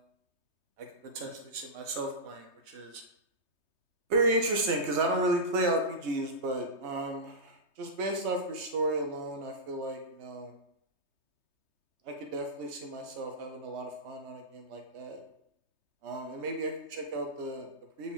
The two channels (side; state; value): left; late; 3.2 ms